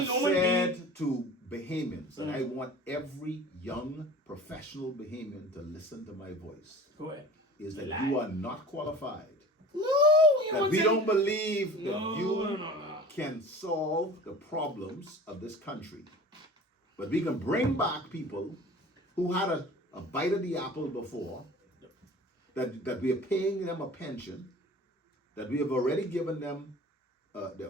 said to Bahamians, and I want every young professional Bahamian to listen to my voice, go ahead, is that you are not qualified. No, we don't believe that you can solve the problems of this country. But we can bring back people who had a bite of the apple before, that we are paying them a pension, that we have already given them their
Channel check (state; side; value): normal; both; correlation 0.40